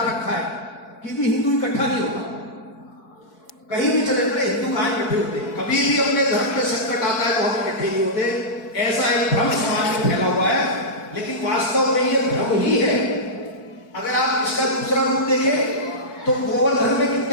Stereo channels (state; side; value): late; right; 4.6 ms